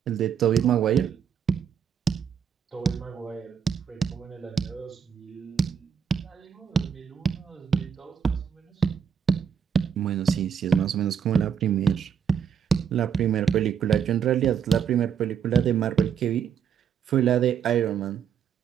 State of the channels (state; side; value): quieter; left; 7.6 dB